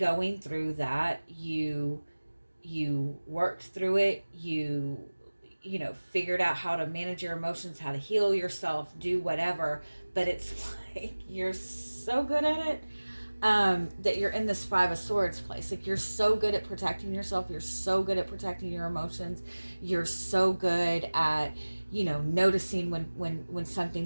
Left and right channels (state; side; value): inverted; both; correlation -1.00